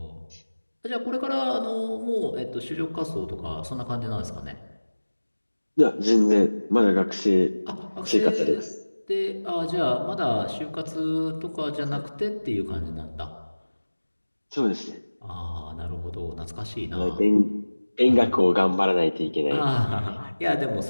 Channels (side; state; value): both; inverted; correlation -1.00